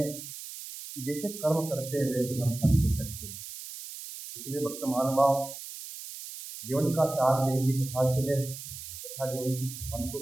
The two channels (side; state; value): right; noise; hiss, 11 dB below the sound